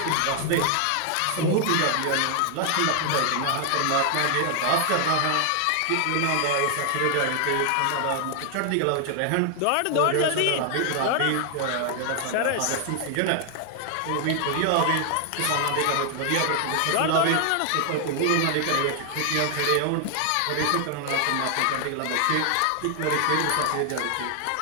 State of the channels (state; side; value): different; both; correlation 0.00